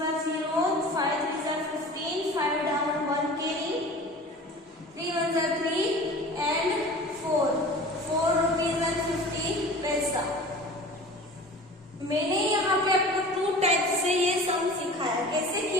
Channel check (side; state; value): both; normal; correlation 0.40